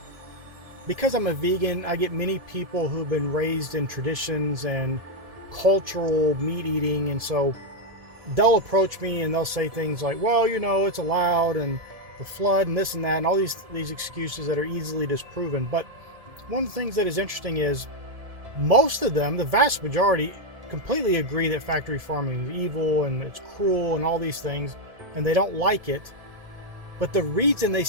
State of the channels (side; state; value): left; late; 1.7 ms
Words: Because I'm a vegan, I get many people who've been raised in traditions and cultural meat eating, and so they'll approach me and they'll say things like, well, it's allowed, and the flood and this and that, and all these excuses that are easily disproven. But one of the things that is interesting is most of them, the vast majority, completely agree that factory farming is evil and it's cruel and all these things, and they don't like it. But the reason they